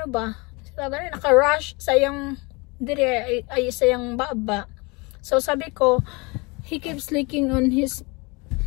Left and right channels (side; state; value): right; quieter; 27.3 dB